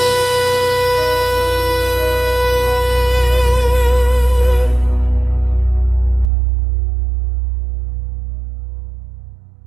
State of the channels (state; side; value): drops out; left; at 6.3 s